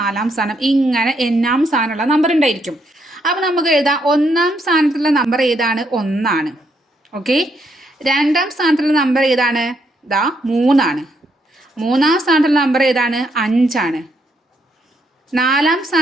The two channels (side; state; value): both; normal; correlation 0.75